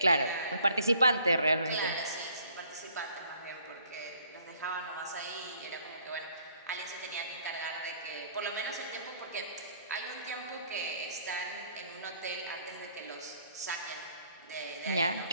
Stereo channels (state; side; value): inverted; both; correlation -0.61